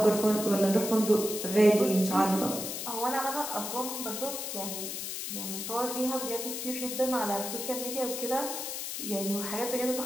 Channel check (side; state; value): left; noise; hiss, 5 dB below the sound